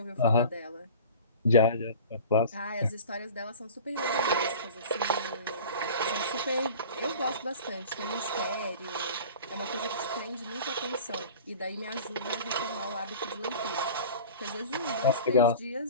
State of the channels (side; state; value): both; inverted; correlation -0.40